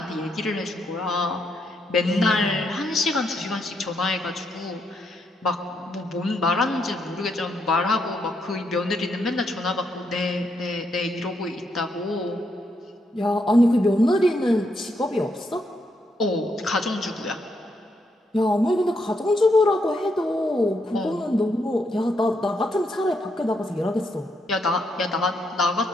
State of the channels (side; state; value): both; normal; correlation 0.78